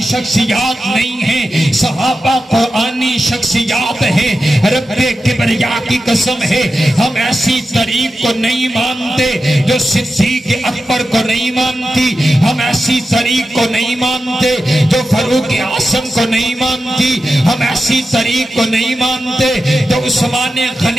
شخصیات نہیں ہیں، صحابہ قرآنی شخصیات ہیں۔ رب کبریا کی قسم ہے ہم ایسی طریق کو نہیں مانتے جو صدیق اکبر کو نہیں مانتی، ہم ایسی طریق کو نہیں مانتے جو فاروق اعظم کو نہیں مانتی، ہم ایسی طریق کو نہیں مانتے جو عثمان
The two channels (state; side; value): normal; both; correlation 0.91